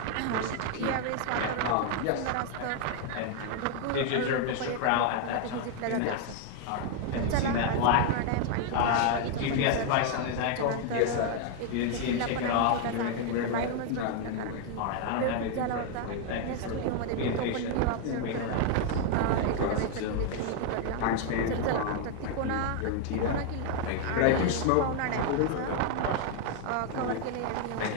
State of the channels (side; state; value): both; different; correlation 0.00